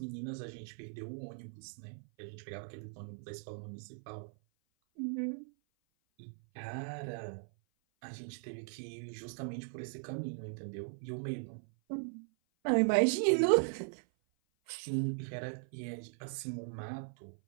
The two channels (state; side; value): silent; left; 52 dB below the other